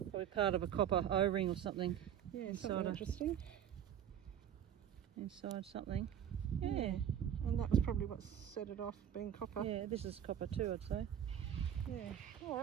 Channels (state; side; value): quieter; left; 9.7 dB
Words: probably part of a copper O-ring or something. yeah, Inside something a- interesting. Inside something. Yeah. And that was probably what set it off, being copper. Yeah, this is copper too, I'd say. Yeah. All